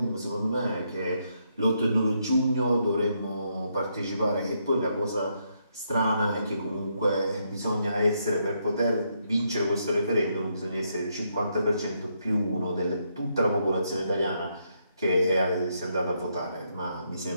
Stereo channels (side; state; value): both; inverted; correlation -0.77